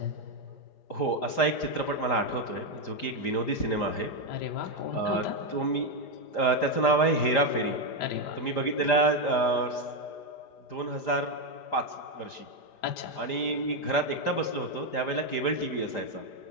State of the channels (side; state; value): right; late; 5.0 ms